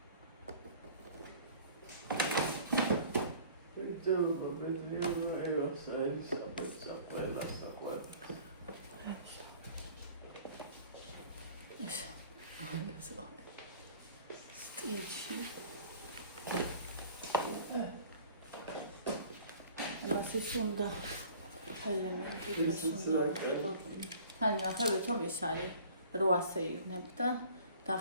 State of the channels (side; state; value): both; inverted; correlation -0.48